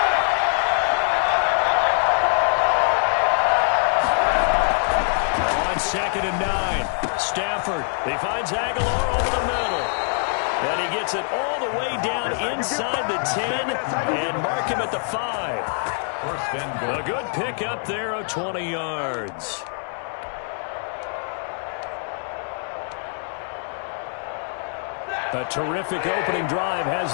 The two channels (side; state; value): right; silent; 58 dB below the other